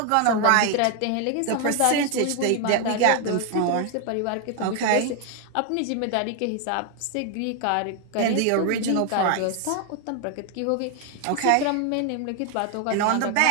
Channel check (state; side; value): different; both; correlation 0.00